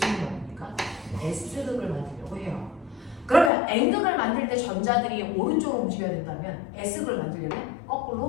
일을 만듭니까? S극을 만들려고 해요. 그러면 N극을 만들 때 전자들이 오른쪽으로 움직여야 된다면 S극을 만들려면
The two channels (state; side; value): drops out; right; at 3.5 s